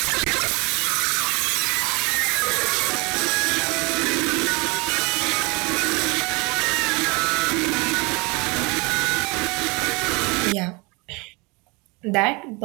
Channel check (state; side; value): quieter; left; 27.5 dB